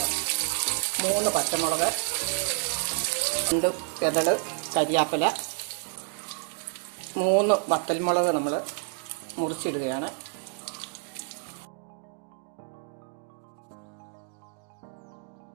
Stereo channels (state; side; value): quieter; left; 35.7 dB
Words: 3 പച്ചമുളക്, 2 ചെതള് കരിയാപ്പല, 3 വത്തൽമുളക് നമ്മൾ മുറിച്ചിടുകയാണ്.